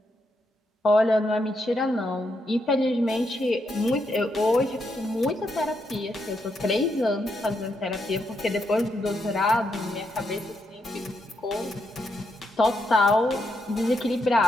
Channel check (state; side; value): normal; both; correlation 0.80